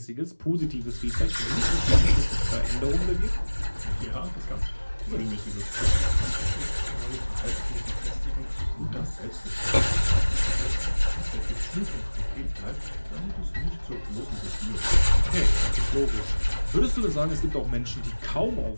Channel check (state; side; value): inverted; both; correlation -1.00